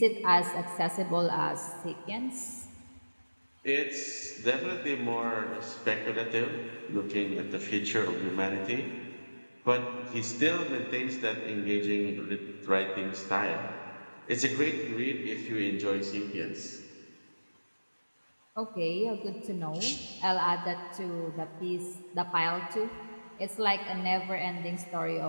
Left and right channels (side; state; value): both; inverted; correlation -1.00